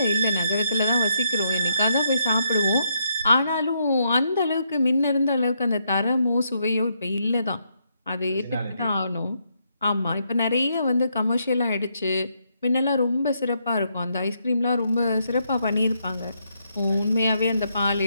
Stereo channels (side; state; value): both; inverted; correlation -0.77